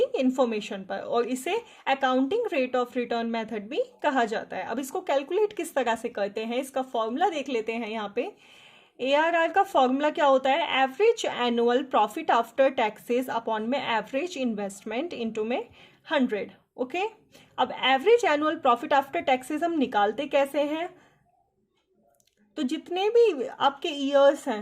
इंफॉर्मेशन पर, और इसे accounting rate of return method भी कहा जाता है. अब इसको कैलकुलेट किस तरह से करते हैं, इसका फॉर्मूला देख लेते हैं. यहाँ पे ARR का फॉर्मूला क्या होता है? Average annual profit after taxes upon में एवरेज इन्वेस्टमेंट इनटू में 100. ओके, अब average annual profit after taxes हम निकालते कैसे हैं? तो जितने भी आपके ईयर्स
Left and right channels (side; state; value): both; identical; correlation 1.00